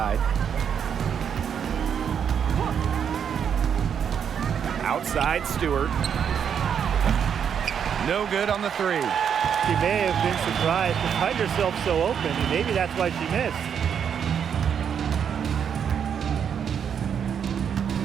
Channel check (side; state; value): left; quieter; 7.9 dB